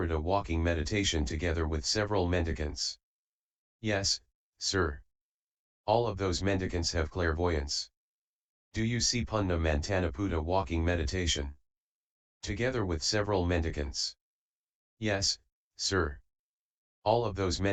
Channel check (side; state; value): both; identical; correlation 1.00